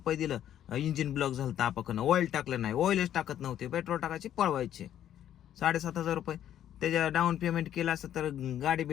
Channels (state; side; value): quieter; right; 10.9 dB